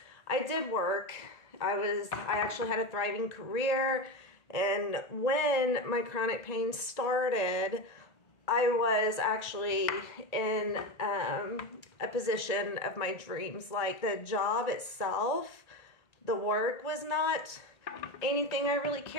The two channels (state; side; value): late; right; 1.8 ms